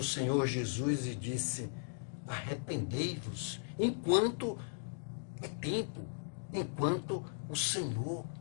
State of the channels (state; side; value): silent; right; digital silence